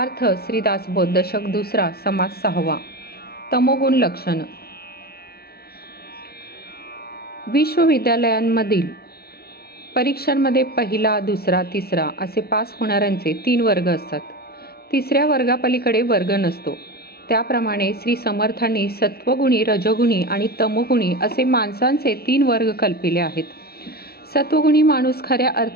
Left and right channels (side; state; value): right; late; 0.45 ms